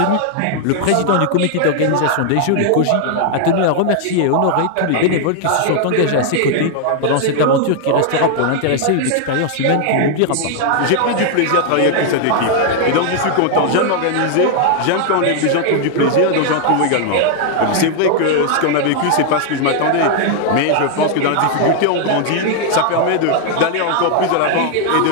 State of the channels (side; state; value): both; different; correlation 0.00